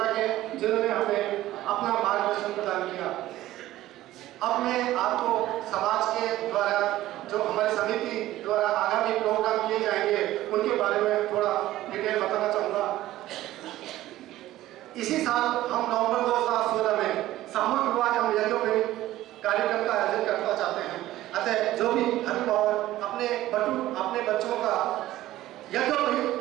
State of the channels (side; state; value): left; quieter; 15.2 dB